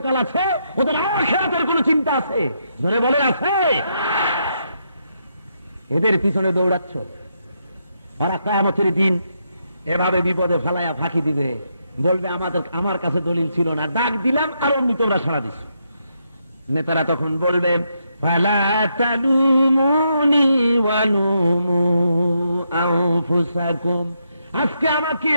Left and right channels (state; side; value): inverted; both; correlation -0.79